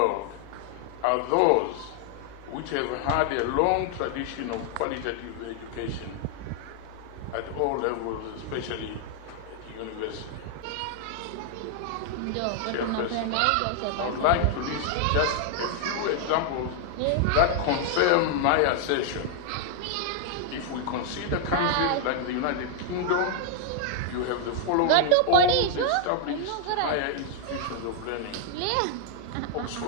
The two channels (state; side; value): different; both; correlation 0.00